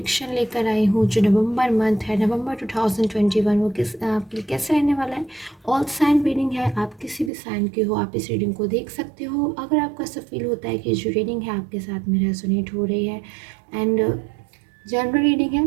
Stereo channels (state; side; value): drops out; left; at 7.3 s